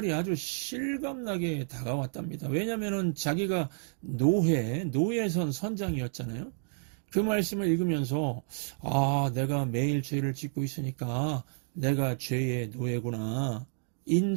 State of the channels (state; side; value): silent; left; 57 dB below the other